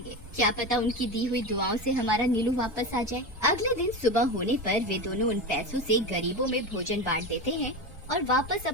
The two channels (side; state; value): left; noise; hum, 24 dB below the sound